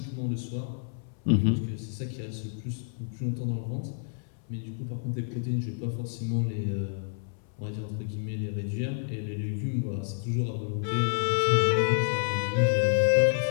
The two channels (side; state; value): right; silent; 58 dB below the other